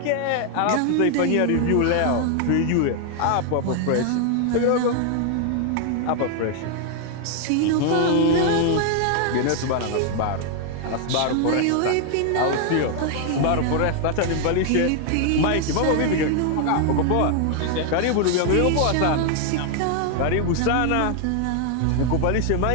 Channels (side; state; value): both; different; correlation 0.00